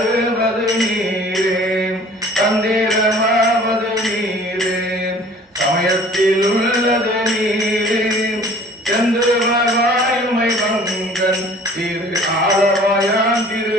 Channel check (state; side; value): normal; both; correlation 0.49